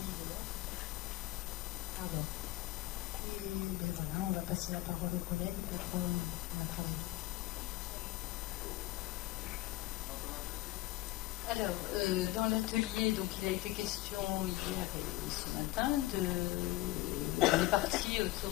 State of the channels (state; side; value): quieter; right; 18.0 dB